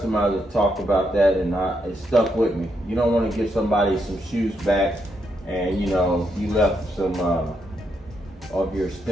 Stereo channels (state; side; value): normal; both; correlation 0.79